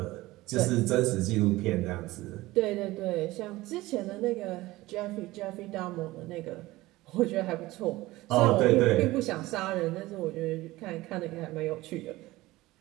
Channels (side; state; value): left; quieter; 18.6 dB